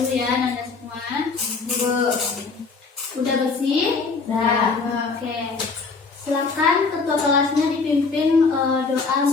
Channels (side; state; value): right; quieter; 4.4 dB